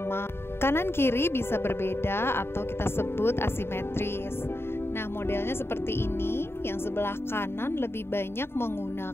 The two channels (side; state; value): right; late; 0.11 ms